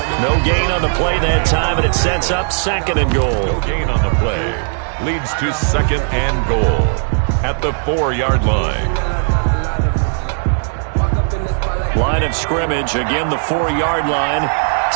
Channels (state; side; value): silent; left; 69 dB below the other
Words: No gain on the play that time, and it sets up 2nd and goal. No gain on the play. Leads to 2nd and goal at the 4-yard line. Line of scrimmage, again the 4-yard line.